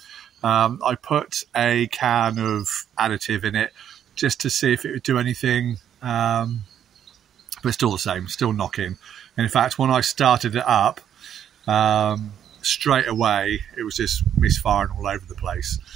I put a can of additive in it just to see if it would do anything, but it's still the same, still knocking. And in fact, when I started it up, straight away, it was just misfiring all over the place.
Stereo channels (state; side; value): quieter; left; 9.6 dB